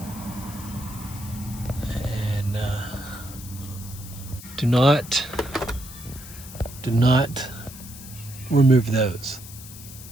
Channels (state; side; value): noise; left; hiss, 15 dB below the sound